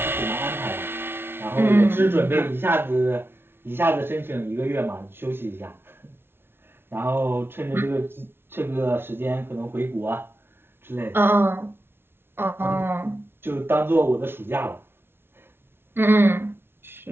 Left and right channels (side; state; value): left; late; 0.11 ms